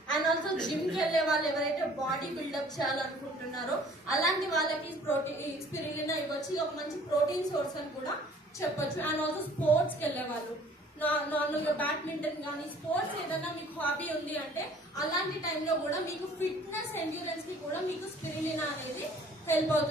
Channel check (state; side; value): normal; both; correlation 0.54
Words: అండ్ ఆల్సో జిమ్ కి వెళ్లే వాళ్ళు ఎవరైతే బాడీ బిల్డప్ చేయాలనుకుంటున్నారో అలాంటి వాళ్ళకి ప్రోటీన్ స్పిరులినా ఇవ్వచ్చు. ఒక మంచి ప్రోటీన్ సోర్స్ అని కూడా చెప్పొచ్చు. అండ్ ఆల్సో స్పోర్ట్స్ కి వెళ్లే వాళ్ళు, నార్మల్ గా బ్యాడ్మింటన్ కానీ, స్పోర్ట్స్ ఏదైనా మీకు హాబీ ఉంది అంటే అలాంటి టైంలో కూడా మీకు ఫిట్నెస్ ఎండ్యూరెన్స్ కి కూడా మీకు స్పిరులినా అనేది హెల్ప్